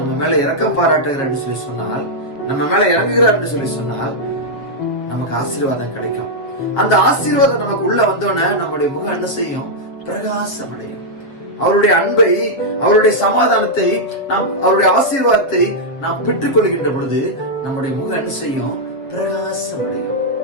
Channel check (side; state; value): right; late; 7.7 ms